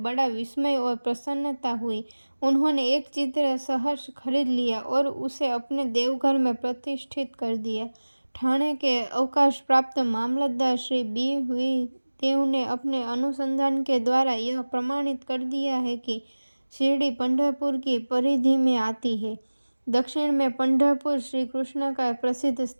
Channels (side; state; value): both; inverted; correlation -1.00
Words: विस्मय और प्रसन्नता हुई। उन्होंने एक चित्र सहर्ष खरीद लिया और उसे अपने देवघर में प्रतिष्ठित कर दिया। ठाणे के अवकाश प्राप्त मामलतदार श्री बी वी देव ने अपने अनुसंधान के द्वारा यह प्रमाणित कर दिया है कि शिरडी पंढरपुर की परिधि में आती है। दक्षिण में पंढरपुर श्री कृष्ण का प्रसिद्ध